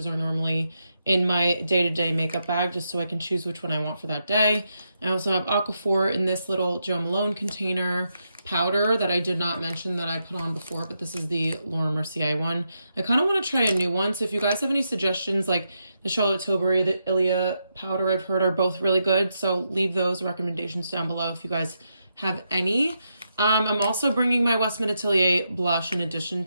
are normally in my day-to-day makeup bag just so I can choose which one I want for that day. I also have Aquaphor in this little Jo Malone container. Powder that I did not mention that I put on before, but this is the Laura Mercier one. I kind of want to try a new one, so if you guys have any suggestions, like the Charlotte Tilbury, the Ilia powder I've heard are both really good, so leave those recommendations down below if you guys have any. I'm also bringing my Westman Atelier blush in addition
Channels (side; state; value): both; inverted; correlation -0.83